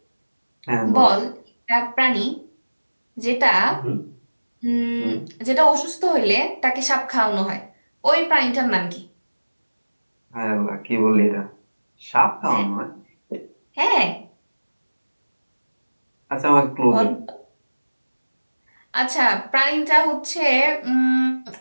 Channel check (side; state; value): both; inverted; correlation -1.00